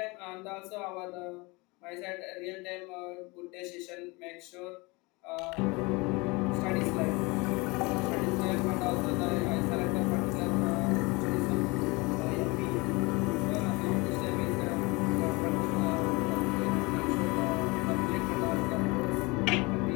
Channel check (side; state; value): right; quieter; 25.8 dB